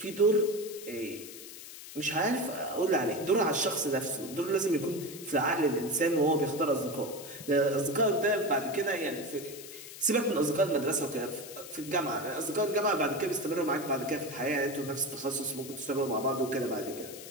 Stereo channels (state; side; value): noise; left; hiss, 13 dB below the sound